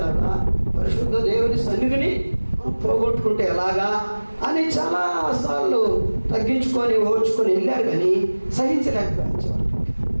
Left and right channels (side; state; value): both; inverted; correlation -1.00